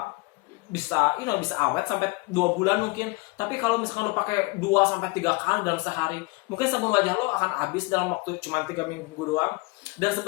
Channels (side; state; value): right; quieter; 25.1 dB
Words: bisa awet sampai 2 bulan mungkin. Tapi kalau misalkan lo pakai 2 sampai 3 kali dalam sehari, mungkin sabun wajah lo akan habis dalam waktu cuma 3 minggu doang. Dan